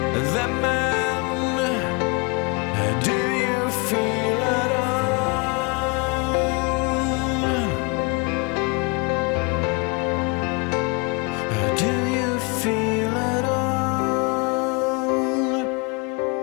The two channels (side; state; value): right; quieter; 30.0 dB